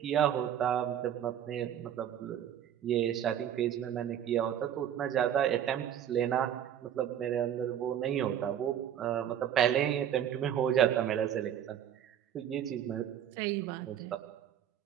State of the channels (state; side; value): quieter; left; 10.0 dB